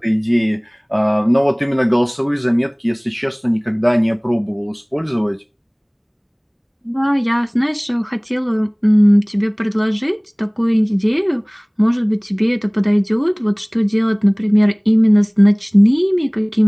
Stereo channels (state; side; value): identical; both; correlation 1.00